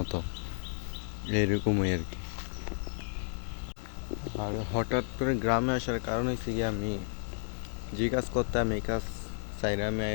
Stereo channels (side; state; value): right; silent; digital silence